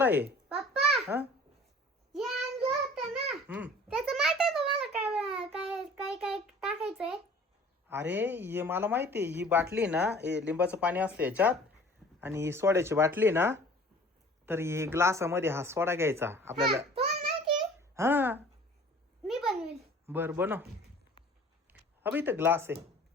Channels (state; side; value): normal; both; correlation 0.48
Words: आहे. पप्पा हं? हे आणलं होतं ना हं. त्याचं माहिती आहे तुम्हाला काय काय काय काय टाकायचंय. अरे हे मला माहिती आहे. ही बाटली ना, हे लिंबाचं पाणी असतं याच्यात, आणि ही सोड्याची बाटली ना, तर ही ग्लासामध्ये हा सोडा घ्यायचा आपल्याला. तुम्हाला माहिती हा मी बनवेल. बर बनव. अबे इथं ग्लास आहे,